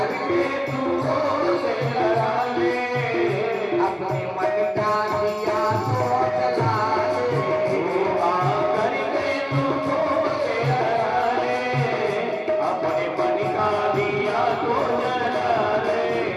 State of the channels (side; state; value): both; identical; correlation 1.00